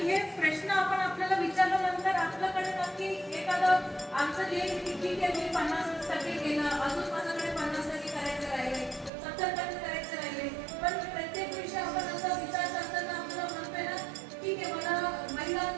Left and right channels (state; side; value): drops out; left; at 9.1 s